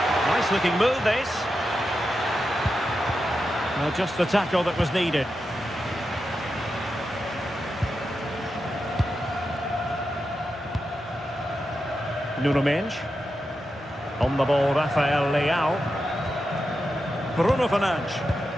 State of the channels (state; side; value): normal; both; correlation 0.89